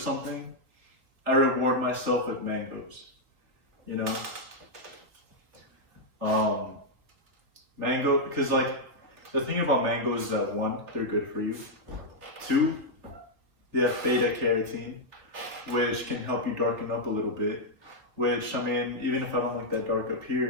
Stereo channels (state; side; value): late; left; 3.3 ms